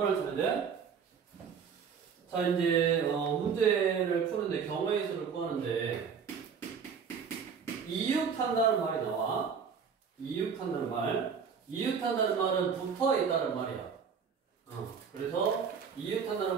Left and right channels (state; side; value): quieter; left; 6.4 dB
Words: 찾는데, 자, 이제, 문제를 푸는데 경우의 수를 구하는데, 이웃한다는 말이 나와. 이웃한다는 말. 이웃한다는 말은 붙어 있다는 말이야. 그래서